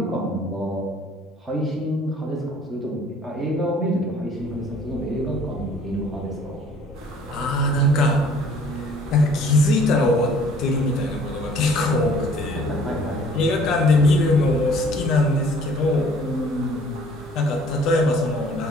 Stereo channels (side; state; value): both; normal; correlation 0.55